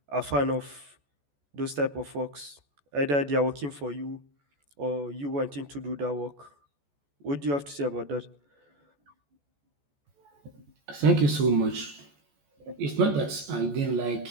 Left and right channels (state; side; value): late; left; 14 ms